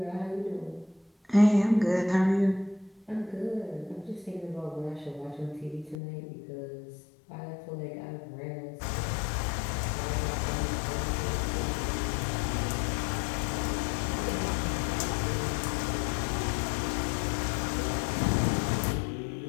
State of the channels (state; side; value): drops out; right; at 6.0 s